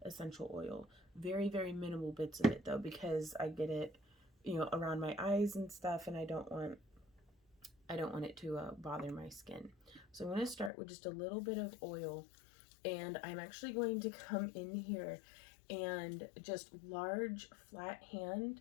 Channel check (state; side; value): drops out; right; at 10.7 s